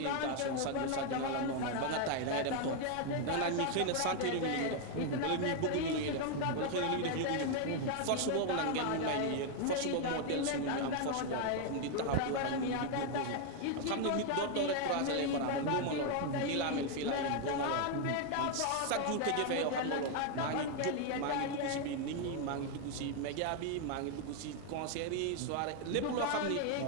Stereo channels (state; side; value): different; both; correlation 0.01